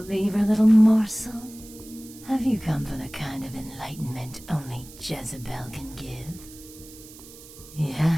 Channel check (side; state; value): right; noise; hiss, 19 dB below the sound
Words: little morsel? Have you come for the kind of enlightenment only Jezebel can give?